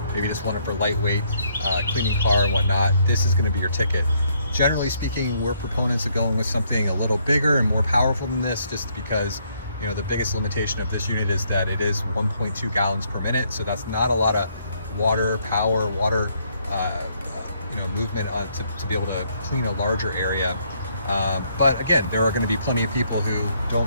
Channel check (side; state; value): both; inverted; correlation -0.70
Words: maybe just want it for lightweight, cleaning car and whatnot, this is going to be your ticket. Generally speaking, we're proponents of going with something a little bigger and more powerful than this, just because, you know, the biggest limitation of this unit is that it is 1.2 gallons per minute. So that's not a lot of water movement to be able to clean a larger area. But again, there are going to be plenty of people who